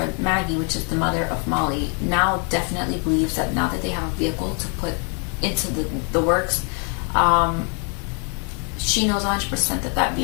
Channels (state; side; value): quieter; right; 37.4 dB